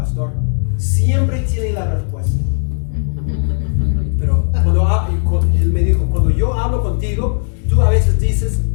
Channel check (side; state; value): right; silent; 69 dB below the other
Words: siempre tiene la respuesta. Pero él me dijo, cuando yo hablo contigo, tú a veces dices,